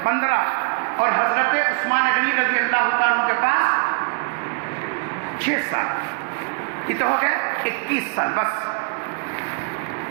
15. اور حضرت عثمان غنی رضی اللہ تعالیٰ کے پاس 6 سال، کتنے ہو گئے؟ 21 سال. بس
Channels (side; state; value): left; quieter; 35.7 dB